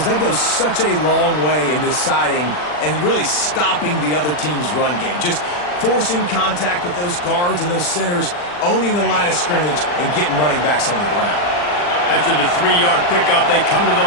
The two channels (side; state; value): right; late; 40 ms